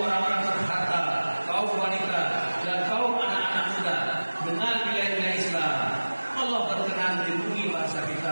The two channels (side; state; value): both; inverted; correlation -1.00